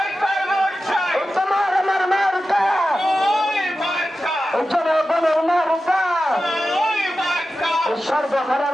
এই তোমার আমার মার্কা, এই জনগণের মার্কা, এই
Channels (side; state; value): both; normal; correlation 0.93